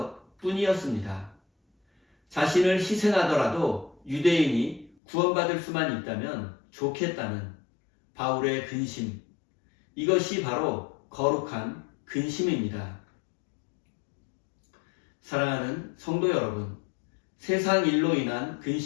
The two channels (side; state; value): right; drops out; at 5.0 s